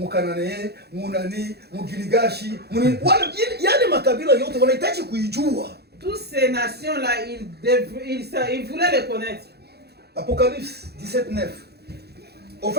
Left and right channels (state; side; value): late; left; 0.47 ms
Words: Munani, Mugiligashi, yani makabila yote wanahitaji kuijua. Toutes ces nations là ils voulaient les connaître. Apocalypse 17:9. En